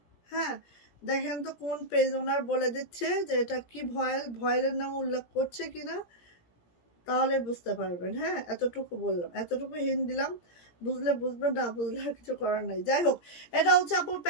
হ্যাঁ, দেখেন তো কোন পেজ ওনার বলে দিচ্ছে যে এটা কি ভয়েল, ভয়েলের নাম উল্লেখ করছে কিনা, তাহলে বুঝতে পারবেন। হ্যাঁ, এতটুকু বললাম, এতটুকু হিন্ট দিলাম, বুঝলে বুঝবেন, না বুঝলে আর কিছু করার নাই। যাই হোক, এটা হচ্ছে আপু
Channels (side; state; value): right; late; 17 ms